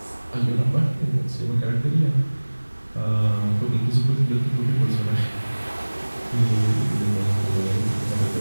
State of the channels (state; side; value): inverted; both; correlation -1.00